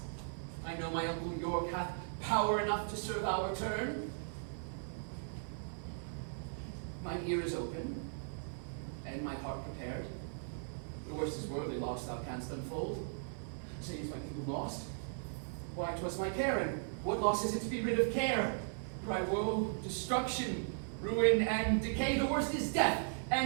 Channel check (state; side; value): silent; left; 53 dB below the other